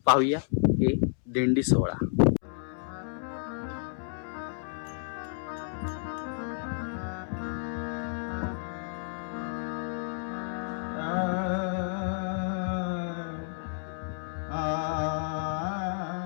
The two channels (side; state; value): right; silent; 57 dB below the other